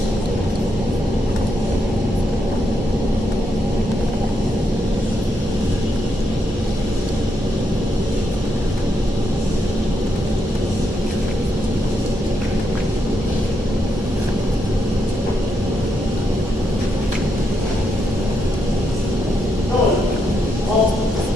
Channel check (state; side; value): normal; both; correlation 0.80